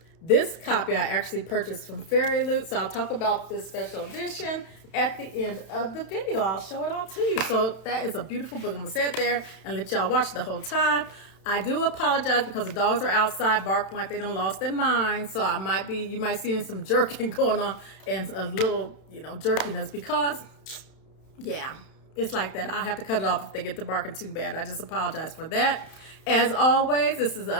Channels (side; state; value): right; late; 32 ms